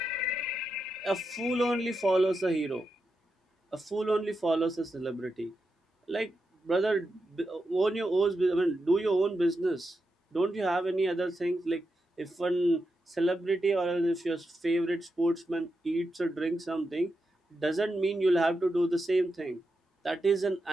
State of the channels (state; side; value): normal; both; correlation 0.87